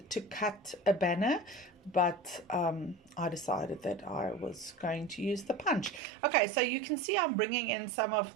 to cut a banner, but I decided that I was going to use the punch. Okay, so you can see I'm bringing in some of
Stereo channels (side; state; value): left; drops out; at 6.0 s